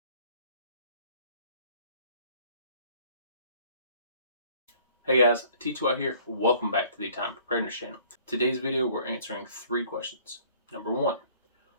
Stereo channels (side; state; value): both; inverted; correlation -0.56